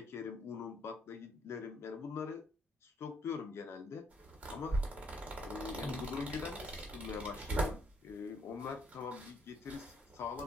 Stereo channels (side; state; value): both; normal; correlation 0.70